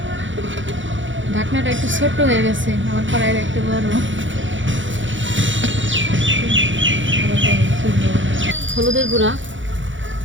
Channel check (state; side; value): late; left; 0.56 ms